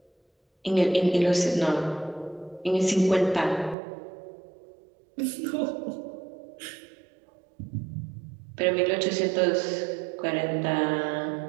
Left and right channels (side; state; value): left; drops out; at 3.8 s